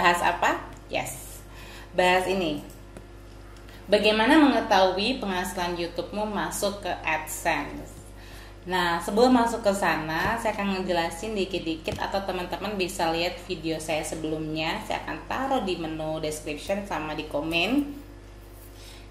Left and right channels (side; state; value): both; identical; correlation 1.00